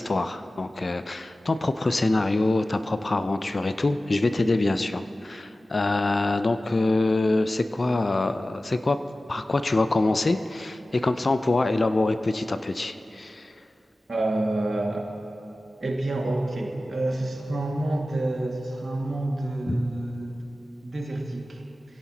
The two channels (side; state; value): both; normal; correlation 0.96